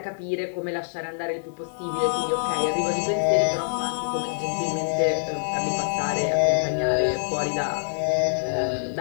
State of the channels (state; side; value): silent; right; digital silence